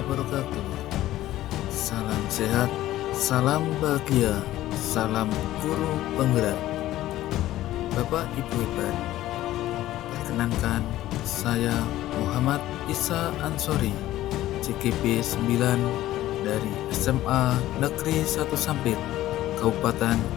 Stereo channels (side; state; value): right; quieter; 14.7 dB